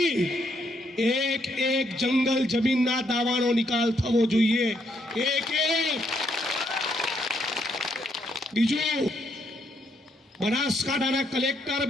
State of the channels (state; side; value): normal; both; correlation 0.74